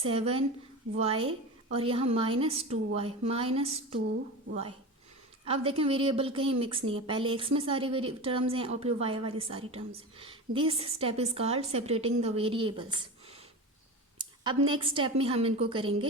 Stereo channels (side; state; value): both; normal; correlation 0.27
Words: और यहाँ -2y। अब देखें वेरिएबल कहीं मिक्स नहीं है, पहले x में सारी टर्म्स हैं और फिर y वाली सारी टर्म्स हैं। This step is called separating the variables. अब नेक्स्ट स्टेप में हम इनको